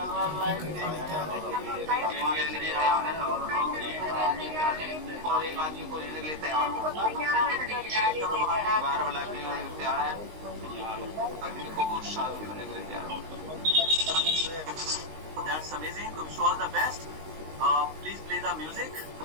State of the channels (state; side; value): late; left; 19 ms